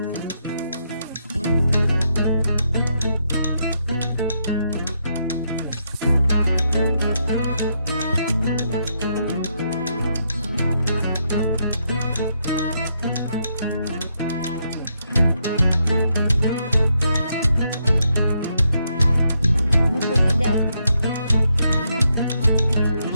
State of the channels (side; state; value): both; inverted; correlation -0.78